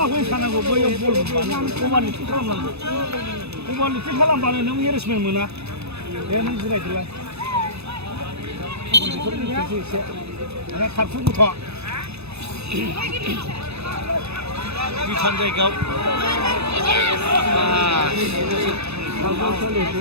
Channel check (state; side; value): late; left; 0.79 ms